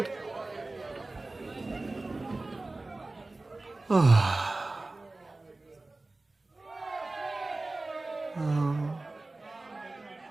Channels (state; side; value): quieter; left; 3.1 dB